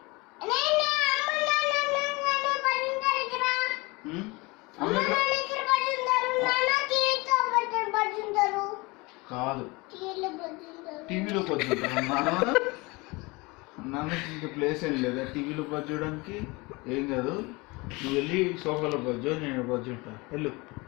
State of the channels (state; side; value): quieter; right; 24.9 dB